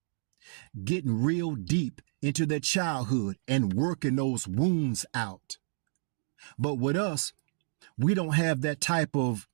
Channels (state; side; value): silent; left; digital silence